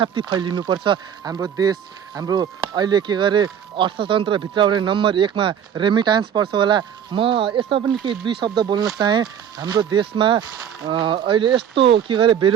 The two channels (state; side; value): quieter; left; 8.8 dB